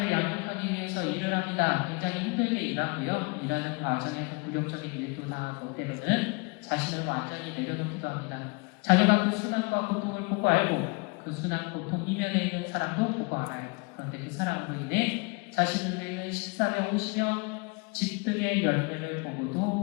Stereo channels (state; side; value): quieter; right; 30.2 dB